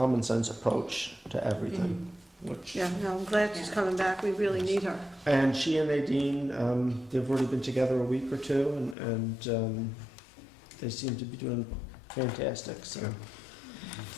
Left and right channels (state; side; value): drops out; right; at 9.0 s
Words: sense approach to everything. Which, Yeah, no, I'm glad she's coming back. We really need her. and she and Nadine, they've already been together a week or two, and they seem to be doing fantastic. So,